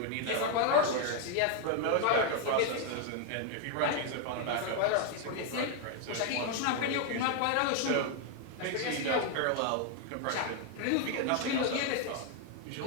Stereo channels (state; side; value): different; both; correlation 0.01